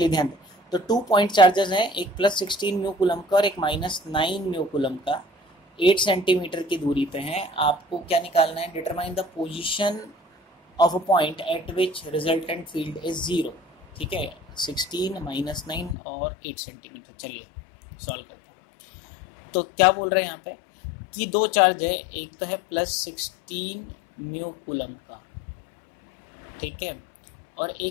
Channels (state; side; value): drops out; right; at 16.0 s